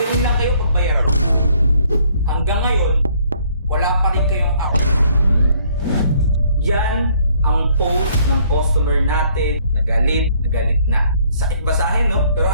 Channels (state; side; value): inverted; both; correlation -0.63